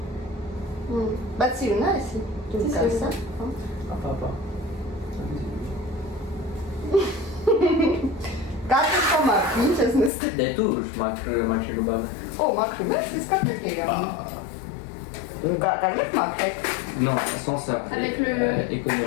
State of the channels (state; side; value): drops out; right; at 10.1 s